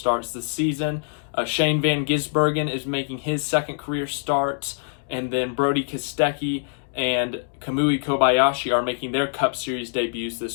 this season. Shane Van Gisbergen is making his second career start, and then Brodie Kostecki and Kamui Kobayashi are making their Cup Series debuts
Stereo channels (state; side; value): silent; right; digital silence